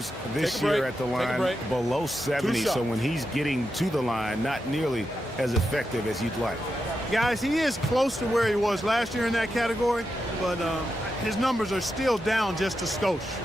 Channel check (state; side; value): normal; both; correlation 0.87